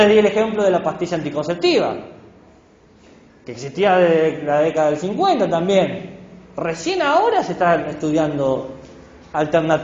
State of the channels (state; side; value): identical; both; correlation 1.00